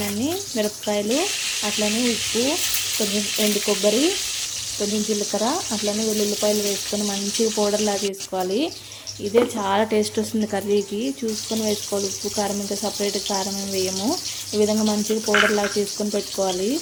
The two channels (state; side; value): identical; both; correlation 1.00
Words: మిరపకాయలు, అట్లనే ఉప్పు, కొంచెం ఎండు కొబ్బరి, కొంచెం జీలకర్ర, అట్లనే వెల్లుల్లిపాయలు వేసుకొని మంచిగా పౌడర్లా చేసుకోవాలి. ఇదే చాలా టేస్ట్ వస్తుంది కర్రీకి. చూసుకొని వేసుకోవాలి. ఉప్పు కారం ఇంకా సపరేట్ కారం ఏమి వేయము. ఈ విధంగా మంచిగా పౌడర్లా చేసుకొని పెట్టుకోవాలి.